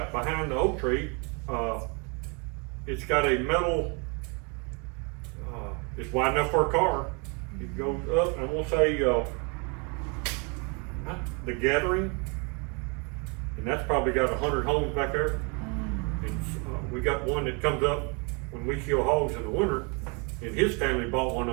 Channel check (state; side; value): quieter; left; 33.2 dB